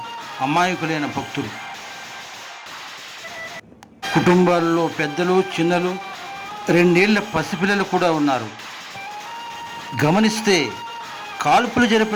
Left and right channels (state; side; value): identical; both; correlation 1.00